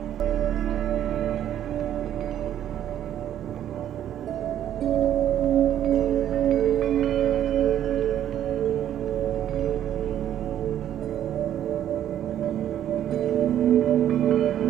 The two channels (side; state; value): left; quieter; 10.9 dB